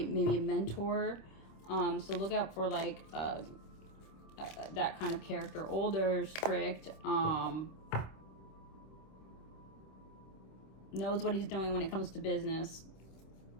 a mentor. So look out for like that kind of character, older, strict, knows what he's doing when it comes to business,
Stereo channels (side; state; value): right; late; 26 ms